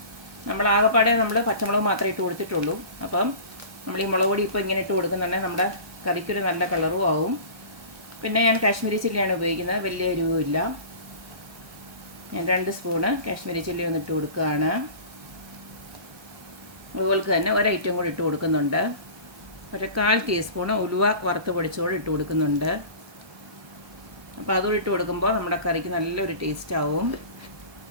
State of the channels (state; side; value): late; left; 1.2 ms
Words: നമ്മൾ ആകെപ്പാടെ നമ്മൾ പച്ചമുളക് മാത്രമേ ഇട്ട് കൊടുത്തിട്ടുള്ളൂ. അപ്പം നമ്മൾ ഈ മുളക് പൊടി ഇപ്പോൾ ഇങ്ങനെ ഇട്ട് കൊടുക്കുന്നുണ്ടെങ്കിൽ നമ്മുടെ കറിക്കൊരു നല്ല കളറും ആവും. പിന്നെ ഞാൻ കാശ്മീരി ചില്ലിയാണ് ഉപയോഗിക്കുന്നത്, വലിയ എരിവുമില്ല. ഞാൻ 2 സ്പൂണ് കാശ്മീരി ചില്ലി ഒന്നിട്ട് കൊടുക്കുകയാണ്. അതുപോലെ തന്നെ ഒരു ഐറ്റം കൂടി ഇട്ട് കൊടുക്കുന്നുണ്ട്. 1/4 ടീസ്പൂണ് ഉലുവ വറുത്ത് പൊടിച്ചോട് ഇട്ട് കൊടുക്കുന്നുണ്ട്. അപ്പോൾ അതും ഇട്ട് കൊടുക്കുമ്പോൾ നമ്മുടെ കറിക്ക് നല്ലൊരു ടേസ്റ്റ് ആവും.